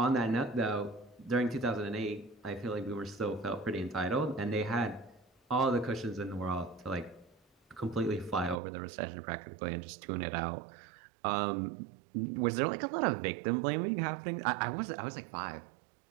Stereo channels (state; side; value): drops out; left; at 8.6 s